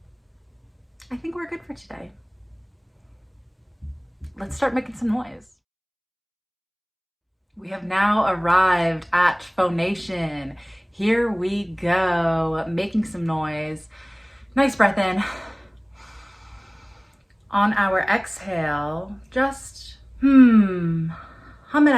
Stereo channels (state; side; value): identical; both; correlation 1.00